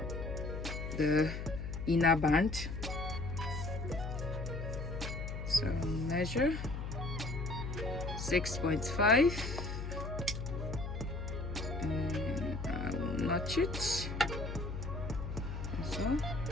the inner band. So measure 6.5, and I will notch it as well,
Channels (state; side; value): noise; left; hum, 5 dB below the sound